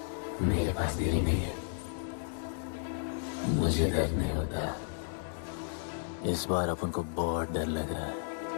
मेरे पास दिल ही नहीं है, मुझे दर्द नहीं होता। इस बार अपन को बहुत डर लग रहा है।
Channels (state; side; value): silent; right; 56 dB below the other